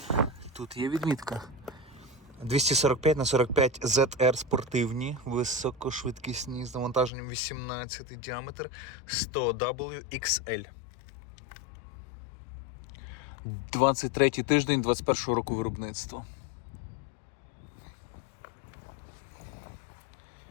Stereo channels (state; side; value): drops out; right; at 7.1 s